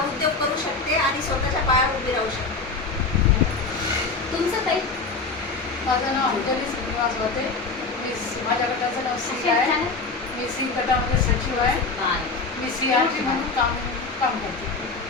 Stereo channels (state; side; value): quieter; right; 4.1 dB